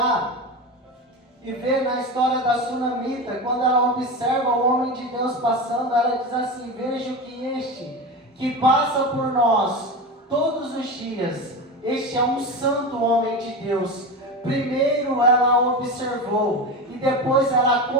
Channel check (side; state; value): both; normal; correlation 0.23